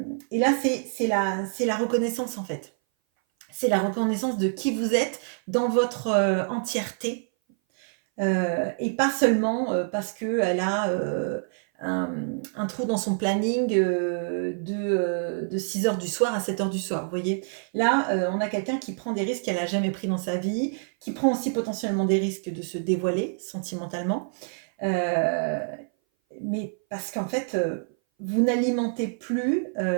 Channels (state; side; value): silent; left; 58 dB below the other